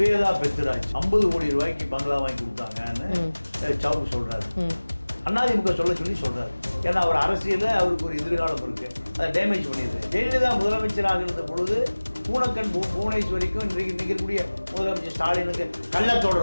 பெத்ராஜ் 50 கோடி ரூபாய்க்கு பங்களா வாங்கி கொடுத்தாங்கன்னு சவுக்கு சொல்றாரு. அதிமுக சொல்லி சொல்றாரு. ஏன்னா அவர் அரசியலில் அவருக்கு ஒரு எதிர்காலம் இருக்கு, அதை டேமேஜ் பண்ணிடுது. ஜெயலலிதா முதலமைச்சராக இருந்த பொழுது பூனக்கன் புவனேஸ்வரிக்கும் இன்றைக்கு இருக்கக்கூடிய முதலமைச்சர் ஸ்டாலினுக்கு கள்ள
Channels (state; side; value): inverted; both; correlation -1.00